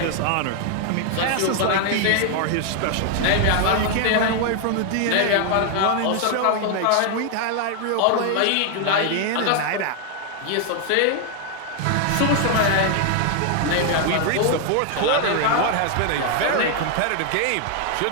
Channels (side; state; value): both; different; correlation 0.00